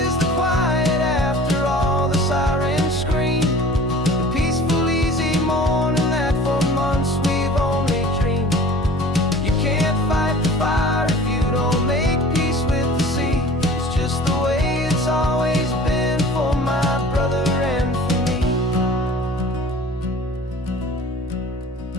is the quiet after all the sirens scream, the peaceful easy morning that for months we've only dreamed. You can't fight the fire if you don't make peace with the sea. It's just the way it's always been for my brother and for me.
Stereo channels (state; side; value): normal; both; correlation 0.45